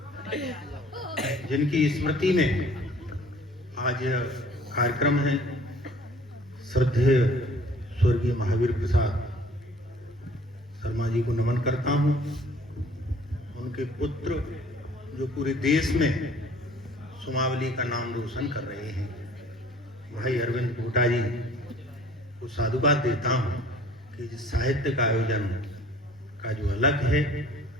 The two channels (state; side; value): normal; both; correlation 0.52